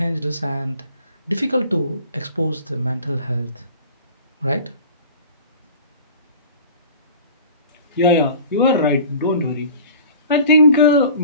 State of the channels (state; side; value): inverted; both; correlation -0.44